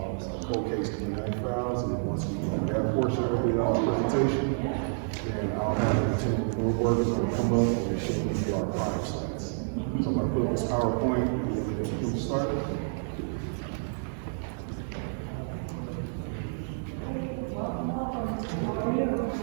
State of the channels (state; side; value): silent; left; digital silence